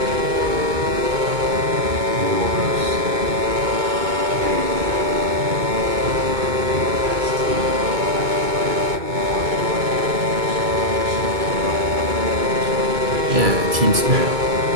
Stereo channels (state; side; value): late; left; 2.2 ms